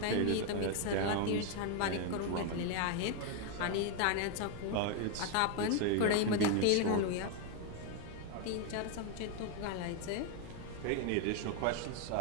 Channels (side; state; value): both; different; correlation 0.01